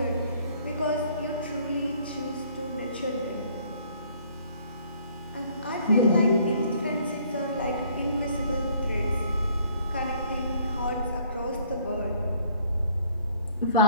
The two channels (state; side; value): inverted; both; correlation -0.61